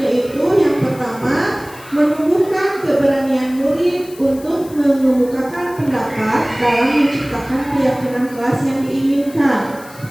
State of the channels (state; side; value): noise; left; hiss, 21 dB below the sound